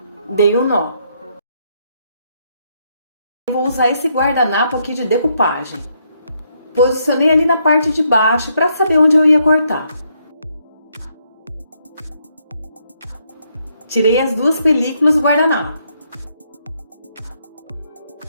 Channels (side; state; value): both; inverted; correlation -0.74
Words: Dei um nó. Vou usar esse guardanapo aqui de decupagem. Posicionei ali na parte de baixo para saber onde eu ia cortar. Tirei as duas películas do guardanapo.